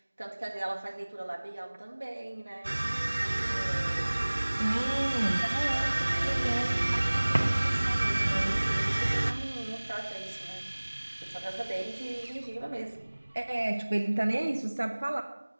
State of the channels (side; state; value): both; inverted; correlation -1.00